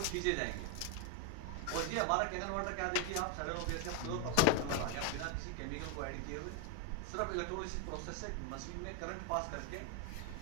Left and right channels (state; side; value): different; both; correlation 0.01